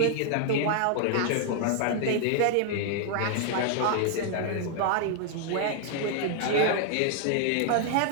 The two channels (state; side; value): different; both; correlation 0.00